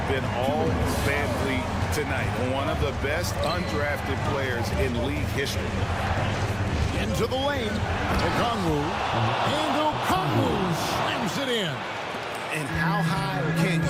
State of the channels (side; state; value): both; identical; correlation 1.00